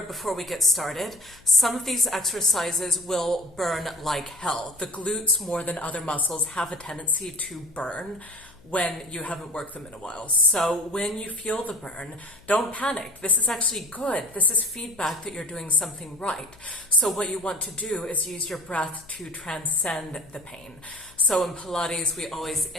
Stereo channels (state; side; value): noise; left; hum, 26 dB below the sound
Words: before we get started. Some of these exercises will burn like hell. The glutes, more than other muscles, have a tendency to burn when you haven't worked them in a while. So when you feel the burn, don't panic. This is actually good. This is feedback that you're doing something right. So what you want to do is use your breath to transcend the pain. So in Pilates, we always